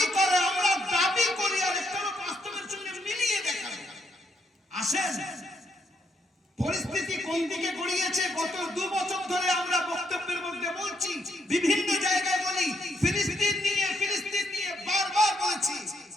করে, আমরা দাবি করি, আর একটা হলো বাস্তবের সঙ্গে মিলিয়ে দেখা। আসেন পরিস্থিতি কোন দিকে গড়িয়েছে গত 2 বছর ধরে আমরা বক্তব্যের মধ্যে বলছি, বিভিন্ন জায়গায় বলি, ফিলিস্তিন নিয়ে বারবার বলেছি।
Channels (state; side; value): normal; both; correlation 0.75